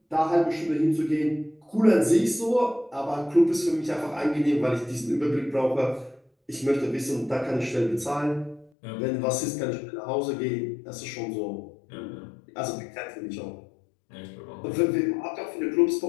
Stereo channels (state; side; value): drops out; right; at 8.7 s